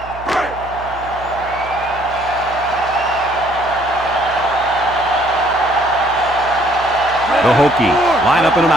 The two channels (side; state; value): right; noise; hum, 16 dB below the sound